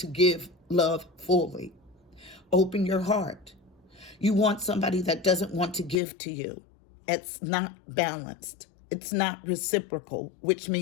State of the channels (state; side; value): drops out; right; at 6.0 s